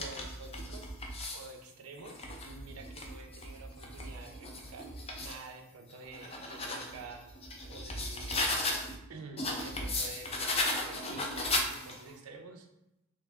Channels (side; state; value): both; normal; correlation 0.08